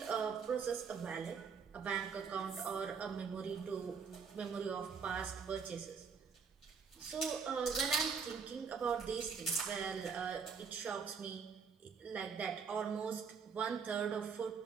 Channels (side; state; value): left; quieter; 6.0 dB